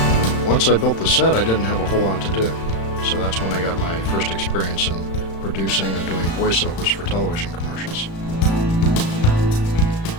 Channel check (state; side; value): late; right; 35 ms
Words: Once I built the set, I didn't have a whole lot to do, so that's when I got my first experience in producing and doing voiceovers for television commercials.